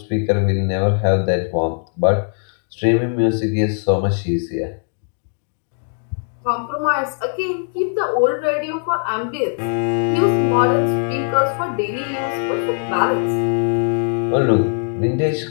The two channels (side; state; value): right; silent; 66 dB below the other